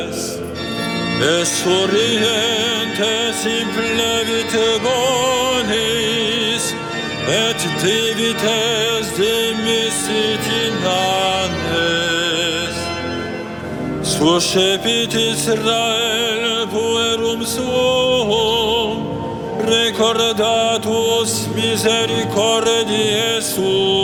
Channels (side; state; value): both; identical; correlation 1.00